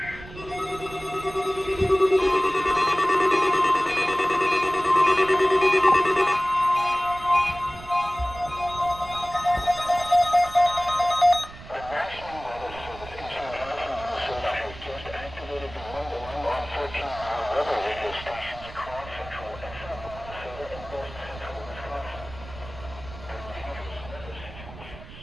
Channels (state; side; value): noise; right; rumble, 16 dB below the sound